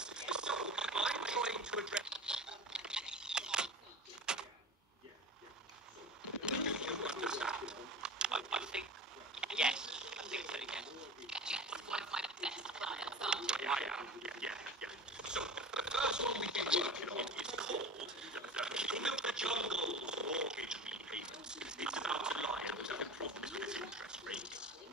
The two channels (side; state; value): both; normal; correlation 0.35